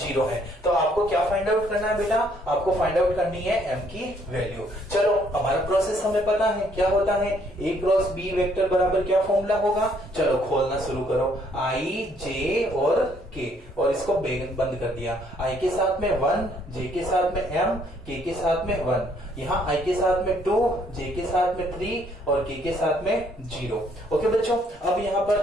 है। तो आपको क्या फाइंड आउट करना है बेटा, आपको फाइंड आउट करनी है एम की वैल्यू। चलो, हमारा प्रोसेस हमें पता है क्या होता है, ए क्रॉस बी वेक्टर बराबर क्या फॉर्मूला होगा। चलो खोलना शुरू करो, आई जे और के, और इसको बंद कर दिया। आई के साथ में 1, जे के साथ में एम, के साथ में 1, यहाँ आई के साथ में 2, जे के साथ में 3 और के साथ में 0। ओके बच्चों, अब यहाँ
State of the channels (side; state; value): both; normal; correlation 0.66